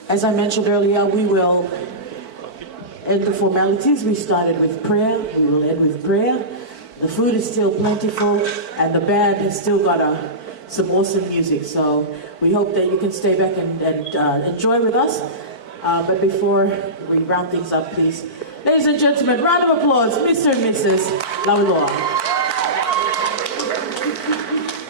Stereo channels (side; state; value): right; late; 4.5 ms